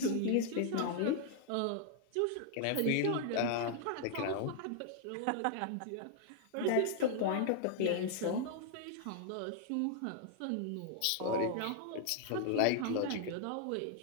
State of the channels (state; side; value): different; both; correlation 0.00